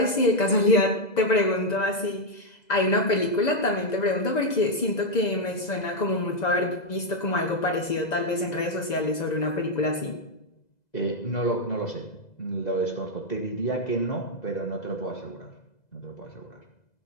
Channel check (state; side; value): late; right; 2.0 ms